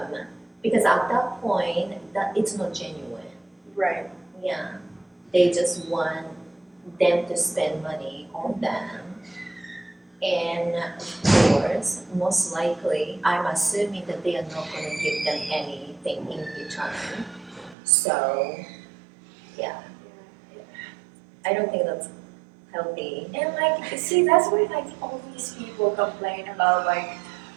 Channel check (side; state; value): left; drops out; at 17.8 s